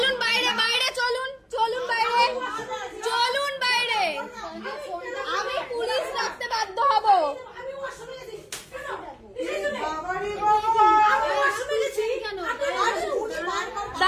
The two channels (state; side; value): identical; both; correlation 1.00